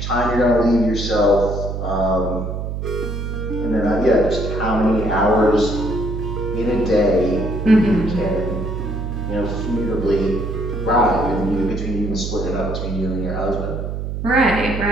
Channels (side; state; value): right; noise; hum, 4 dB below the sound